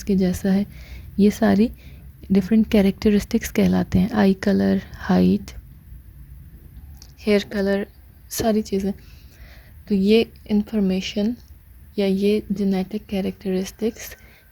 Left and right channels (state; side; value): identical; both; correlation 1.00